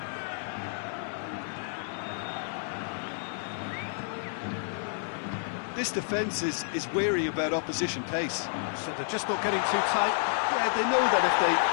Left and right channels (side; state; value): right; silent; 58 dB below the other